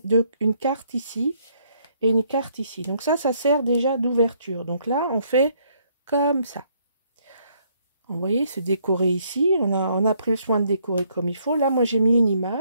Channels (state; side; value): inverted; both; correlation -0.69